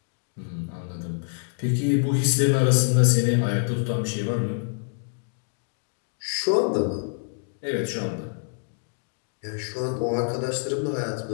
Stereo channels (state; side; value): silent; right; digital silence